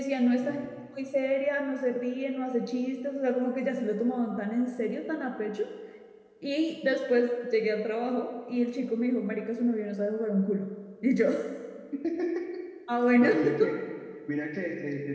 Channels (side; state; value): both; identical; correlation 1.00